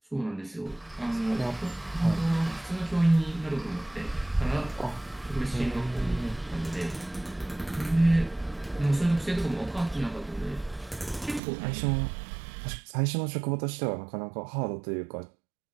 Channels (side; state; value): left; drops out; at 11.4 s